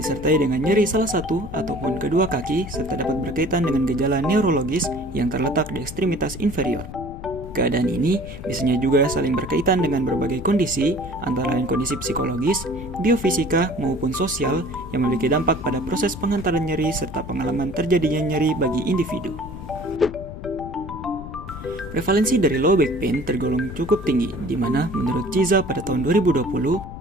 dengan nyeri salah satu ataupun kedua kaki serta dapat berkaitan dengan gejala neurologis yang terletak di ekstremitas inferior. Keadaan ini biasanya juga saling berkaitan dengan berbagai kondisi, antara lain kondisi psikologis, biofisika, maupun sosial yang memiliki dampak pada proses pengantaran nyeri serta pengalaman terjadinya nyeri bagi individu. Prevalensi dari low back pain tergolong cukup tinggi, di mana menurut Ciza pada tahun 2020,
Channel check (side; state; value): left; noise; rumble, 12 dB below the sound